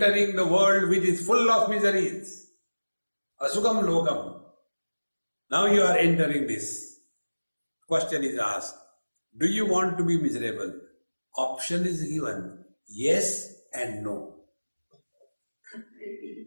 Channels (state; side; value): inverted; both; correlation -1.00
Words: the world which is full of miseries. Asukham lokam. Now you are entering this. Question is asked, do you want to be miserable? Option is given, yes and no.